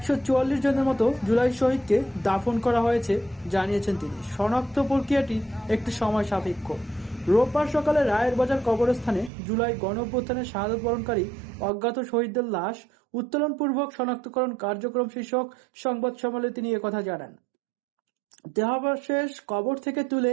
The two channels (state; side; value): drops out; left; at 9.3 s